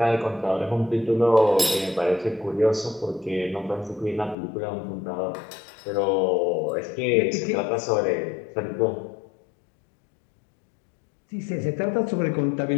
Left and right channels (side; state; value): right; drops out; at 4.4 s